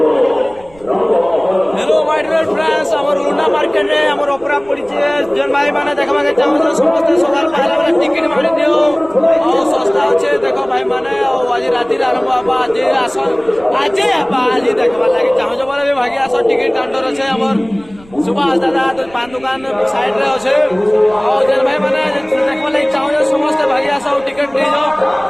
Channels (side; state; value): right; noise; rumble, 24 dB below the sound